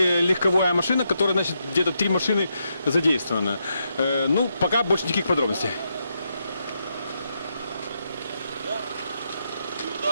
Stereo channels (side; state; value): both; inverted; correlation -0.82